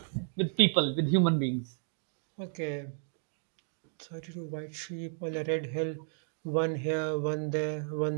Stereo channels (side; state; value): left; silent; 56 dB below the other